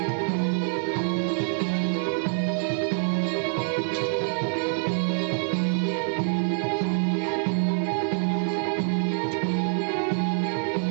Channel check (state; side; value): silent; left; 61 dB below the other